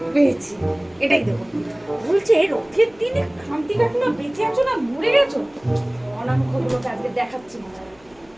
পেয়েছি, এটাই দেবো। বলছে রথের দিনে খামতি কাকিমা বেঁচে আছো না মরে গেছো? অনামুখগুলোকে আজকে দেখাচ্ছি,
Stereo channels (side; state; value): left; noise; hum, 29 dB below the sound